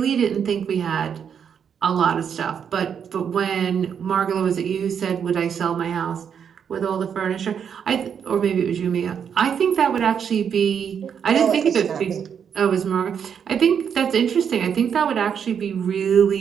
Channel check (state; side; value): quieter; left; 7.6 dB